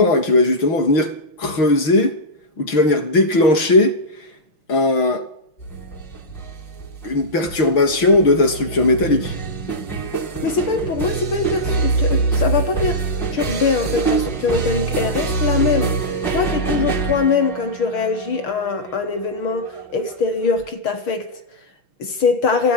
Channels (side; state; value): right; late; 5.9 ms